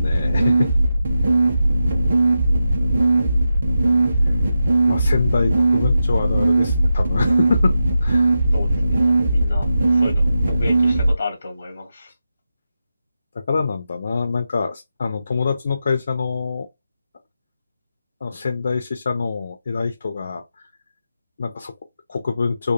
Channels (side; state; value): both; inverted; correlation -0.89